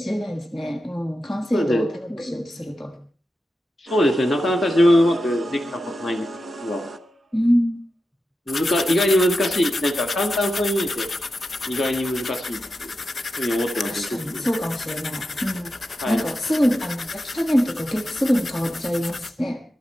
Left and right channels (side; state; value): both; normal; correlation 0.90